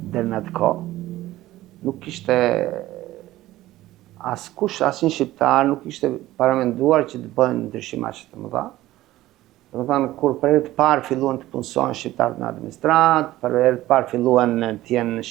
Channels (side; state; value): left; quieter; 15.9 dB